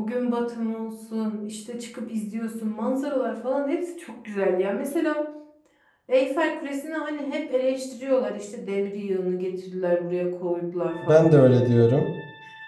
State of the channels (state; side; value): identical; both; correlation 1.00